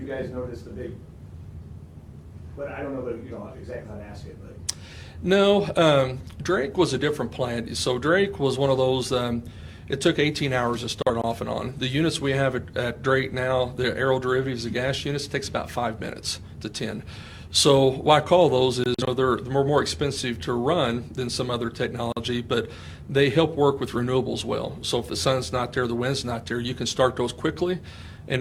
you guys noticed a big, but I don't know exactly how to ask it, but. No, Drake was a different plant. So Drake was one of those, it took 18 hours to start off and on. The units we have at Drake now, the aero derivatives, the gas units, takes about 5 minutes to 10. So why I call those is they're more expensive to run than some other technology, but they help work with renewables well. So if the sun's not there, the wind's not there, you can start those quickly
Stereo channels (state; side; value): identical; both; correlation 1.00